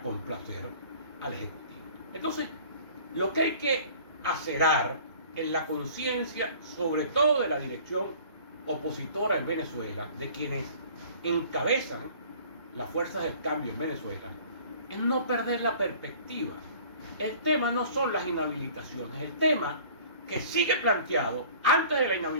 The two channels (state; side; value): inverted; both; correlation -0.49